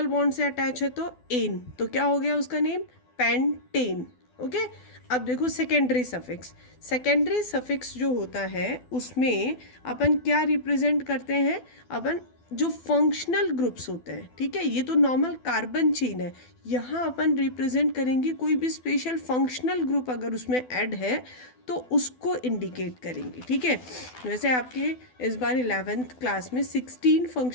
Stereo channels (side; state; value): right; late; 12 ms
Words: bond से अटैच है तो एन, तो क्या हो गया उसका नेम? Pentane, okay. अब देखो सेकेंडरी सफिक्स। सेकेंडरी सफिक्स जो होता है उसमें अपन क्या रिप्रेजेंट करते हैं? अपन जो फंक्शनल ग्रुप्स होते हैं, ठीक है, ये तो नॉर्मल कार्बन चेन है, यहाँ अपन रिप्रेजेंट करेंगे कोई भी स्पेशल फंक्शनल ग्रुप अगर उसमें ऐड है तो उसको इंडिकेट करेंगे, ठीक है। वैसे आपके इस बार 11th क्लास में 16